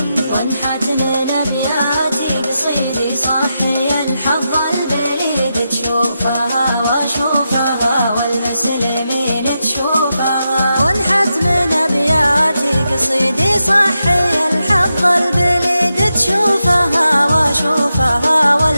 وانحت من ابياتي قصيدي صحي الحظ البليد تشوفها واشوفها والمسلمين تشوفها وانحت من ابياتي قصيدي صحي الحظ البليد تشوفها واشوفها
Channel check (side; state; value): both; inverted; correlation -0.87